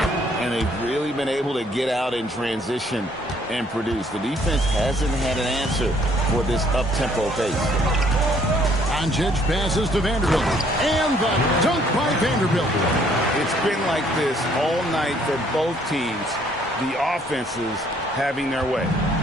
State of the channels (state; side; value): normal; both; correlation 0.63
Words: And they've really been able to get out in transition and produce. The defense hasn't had an answer for this up-tempo pace. Doncic passes to Vanderbilt. And the dunk by Vanderbilt. It's been like this all night for both teams. The offenses having their way.